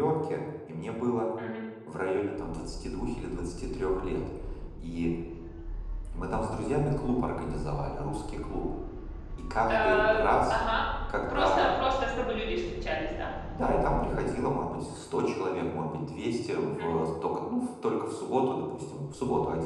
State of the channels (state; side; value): identical; both; correlation 1.00